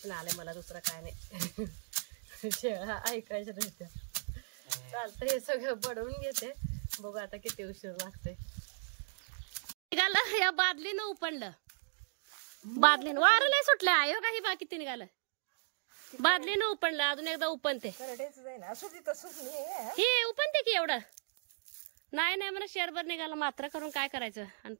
आलंय मला, दुसरं काय नाही. शेळ्या ऐकायचं नसतं. चालतं हे सगळं बडवून घेते. बघू आता किती उशीर लागते. निघालं या बादलीनं उपणलं, बादलीनं वारं नाही सुटलं. आयो काही बाकी ते निघालं बादलीनं उपणलं. अजून एकदा उपणते हे उपणते की एवढं नाही नाही मला शेरभर निघाला मात्र करून काय करायचं. आणि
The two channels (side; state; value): left; silent; digital silence